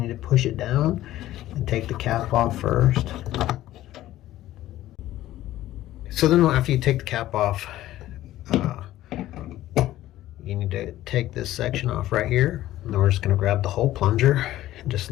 need to push it down and take the cap off first. So then after you take the cap off, you need to take this section off right here. And then we're just going to grab the whole plunger and just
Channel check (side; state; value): right; quieter; 14.5 dB